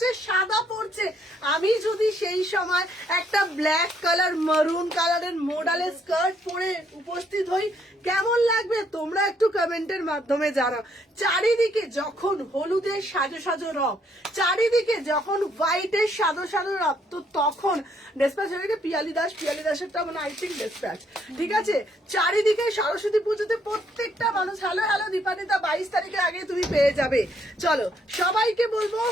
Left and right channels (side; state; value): both; normal; correlation 0.70